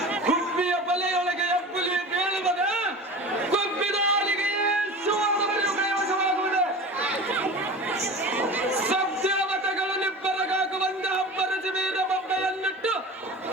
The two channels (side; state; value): both; normal; correlation 0.34